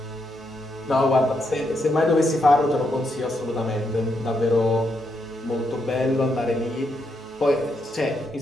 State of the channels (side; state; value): both; normal; correlation 0.80